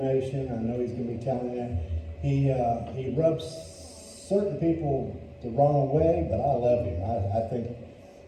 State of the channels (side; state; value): both; identical; correlation 1.00